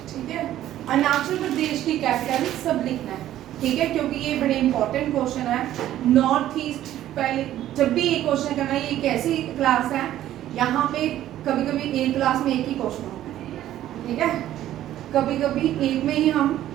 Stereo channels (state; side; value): quieter; left; 12.8 dB